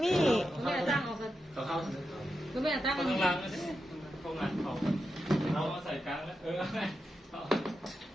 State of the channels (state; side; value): normal; both; correlation 0.88